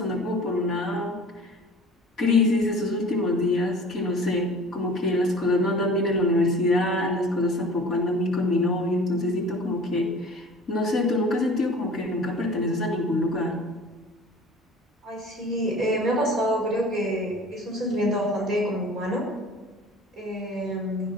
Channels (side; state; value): both; normal; correlation 0.44